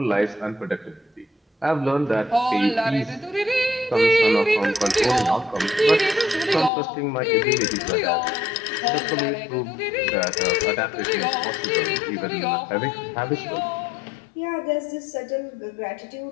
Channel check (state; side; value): drops out; right; at 6.7 s